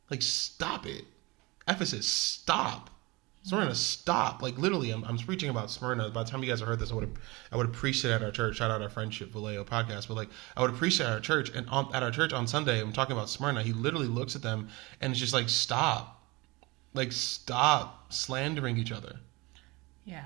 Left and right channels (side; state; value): left; quieter; 24.2 dB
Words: Like, stop it. Ephesus, stop. Smyrna, stop. Like, literally, I'm preaching about Smyrna. By the time you guys have heard this, I would have preached it at our church. Shout out our Friendship Vallejo podcast. But, like, I would have preached it at our church. And at our church on Sunday, I'm talking about Smyrna. He literally looks at them and it's just like, stop. Like, stop slandering each other. Yeah.